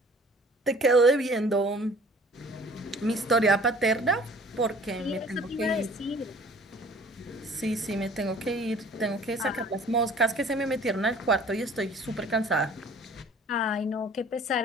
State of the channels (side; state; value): both; normal; correlation 0.51